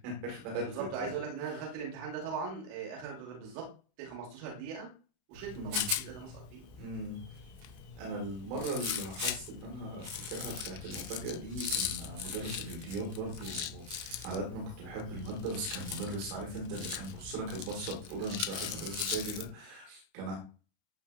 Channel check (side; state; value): left; late; 30 ms